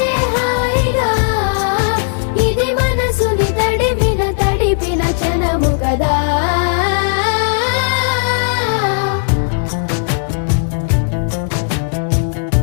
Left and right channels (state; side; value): silent; right; digital silence